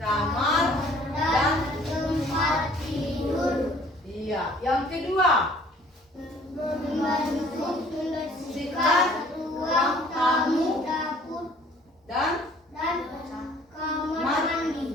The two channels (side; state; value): both; normal; correlation 0.55